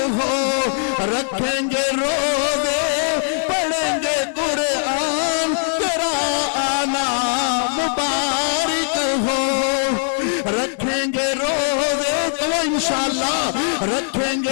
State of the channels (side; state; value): right; silent; digital silence